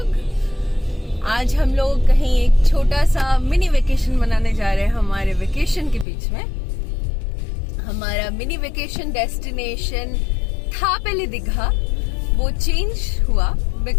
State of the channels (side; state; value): right; drops out; at 6.1 s